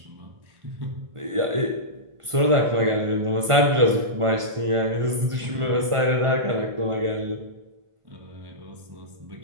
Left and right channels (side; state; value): left; late; 1.5 ms